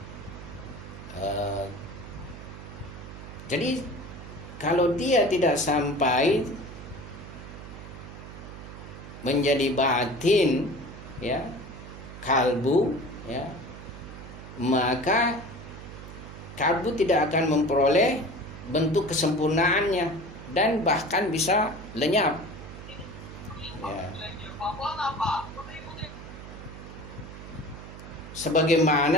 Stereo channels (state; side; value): noise; right; hum, 13 dB below the sound